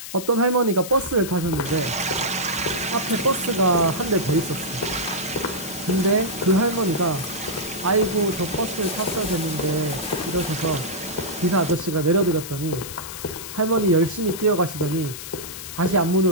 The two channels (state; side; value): noise; left; hiss, 10 dB below the sound